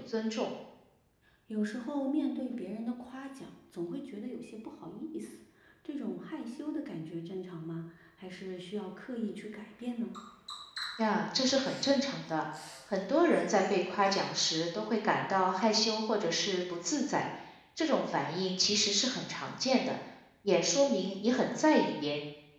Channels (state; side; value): identical; both; correlation 1.00